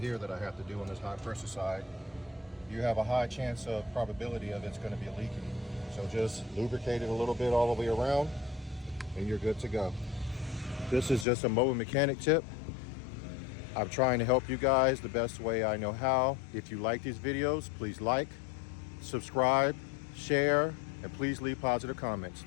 that I have to do on this high pressure side. You have a high chance of probability of it's going to be leaking. So just lubricate it a little bit all the way around and you're good to go. This is just a mobile mechanic tip. I'm trying to help you guys the best way I know how. If you like these videos, please like, subscribe, share, and please leave positive comments.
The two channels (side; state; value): right; drops out; at 11.2 s